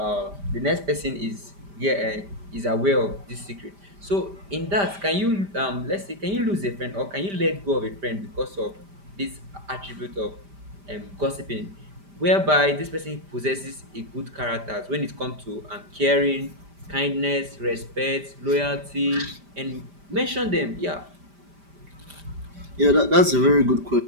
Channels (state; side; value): late; left; 5.0 ms